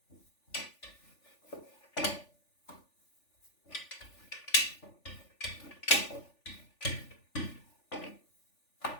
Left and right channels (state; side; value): late; right; 3.4 ms